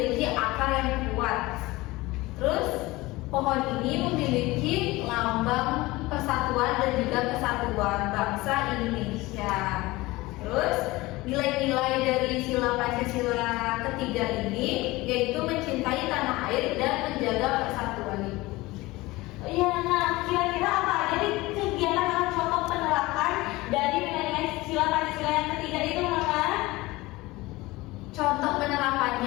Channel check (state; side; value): quieter; right; 20.4 dB